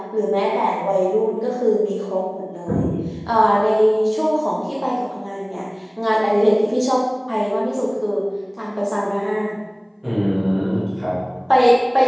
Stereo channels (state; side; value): identical; both; correlation 1.00